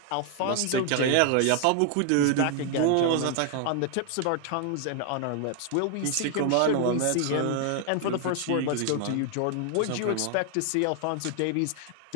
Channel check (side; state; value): both; different; correlation 0.00